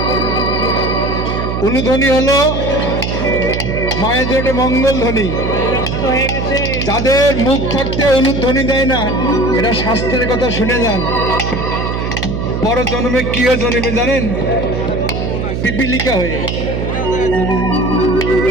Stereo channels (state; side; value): noise; right; hum, 2 dB below the sound